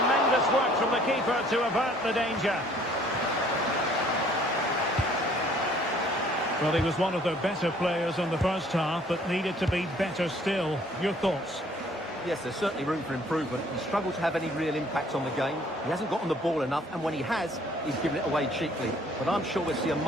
work from the keeper to avert the danger. Well, he was one of their better players in the first half, but needed to be better still. Your thoughts? Yes, there's certainly room for improvement. He struggled to have any real impact on the game. He hasn't gotten the ball enough, and when he has, he's given it away cheaply. But I'm sure we'll see a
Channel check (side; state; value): both; normal; correlation 0.59